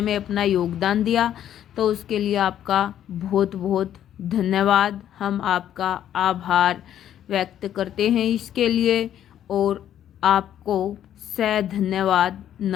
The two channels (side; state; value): right; quieter; 10.7 dB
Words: में अपना योगदान दिया, तो उसके लिए आपका बहुत बहुत धन्यवाद। हम आपका आभार व्यक्त करते हैं इसके लिए और आपको सह धन्यवाद।